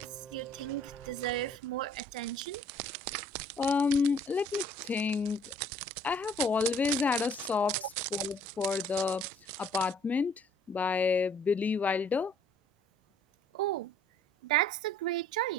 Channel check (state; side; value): normal; both; correlation 0.57